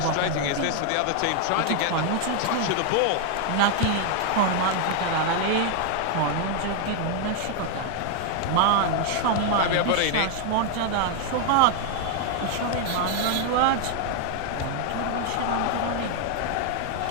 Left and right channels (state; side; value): different; both; correlation 0.00